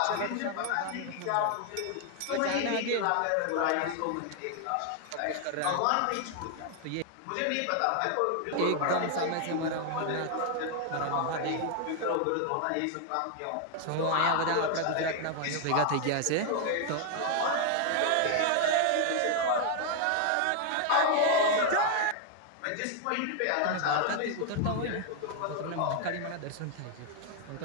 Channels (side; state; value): both; different; correlation 0.00